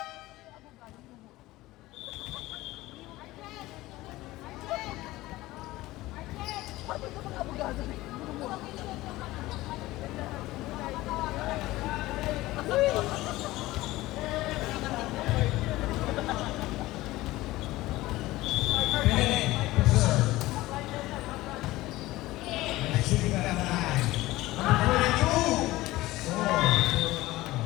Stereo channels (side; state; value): right; quieter; 18.0 dB